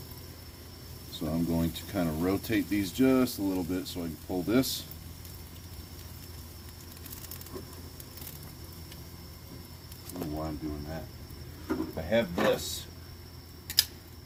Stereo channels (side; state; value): both; identical; correlation 1.00